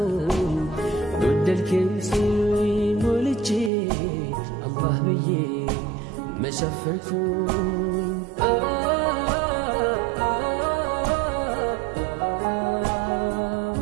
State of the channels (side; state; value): left; drops out; at 3.7 s